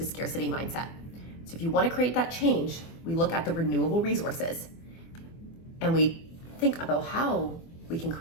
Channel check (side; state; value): right; late; 24 ms